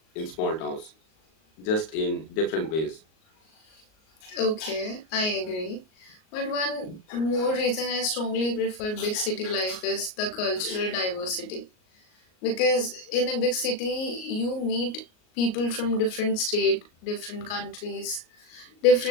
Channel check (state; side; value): late; right; 38 ms